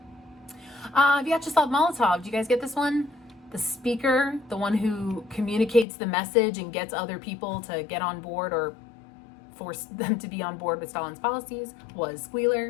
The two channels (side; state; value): right; drops out; at 5.9 s